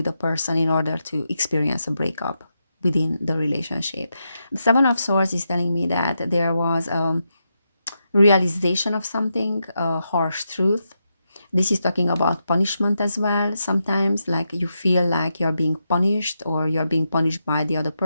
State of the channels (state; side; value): inverted; both; correlation -0.85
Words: a person in order to experience a breakup within the relationship. The Seven of Swords is telling me that there was a realization of something, a harsh truth. This is talking about punishment as well. Sometimes, like, you feel like you're being punished, or you're being punished by the other